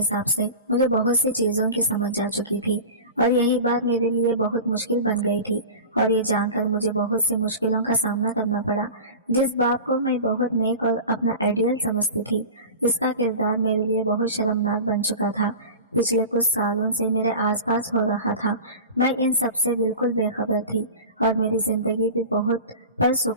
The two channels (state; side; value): inverted; both; correlation -0.33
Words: से मुझे बहुत सी चीजों की समझ आ चुकी थी और यही बात मेरे लिए बहुत मुश्किल बन गई थी और ये जानकर मुझे बहुत सी मुश्किलों का सामना करना पड़ा। जिस बाप को मैं बहुत नेक और अपना आइडियल समझती थी, इसका किरदार मेरे लिए बहुत शर्मनाक बन चुका था। पिछले कुछ सालों से मेरे आसपास हो रहा था, मैं इन सब से बिल्कुल बेखबर थी और मेरी जिंदगी भी बहुत